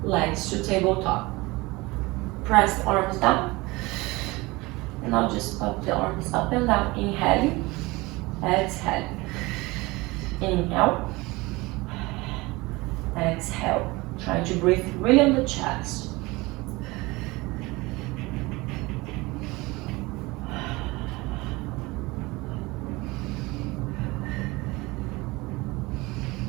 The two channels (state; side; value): quieter; left; 22.5 dB